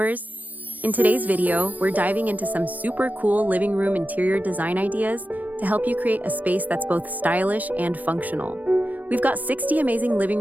In today's video, we're diving into some super cool living room interior design ideas to help you create a space that's both stylish and functional. We've got 60 amazing living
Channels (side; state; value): left; late; 0.080 ms